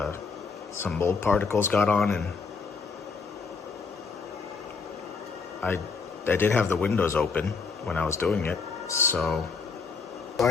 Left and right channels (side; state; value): right; quieter; 4.9 dB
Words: some mold particles got on, and I did have the windows open when I was doing it, so